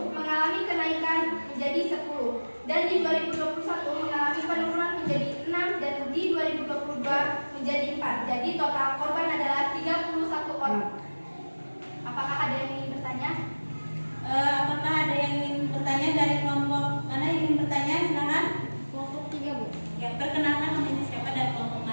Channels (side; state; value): both; inverted; correlation -1.00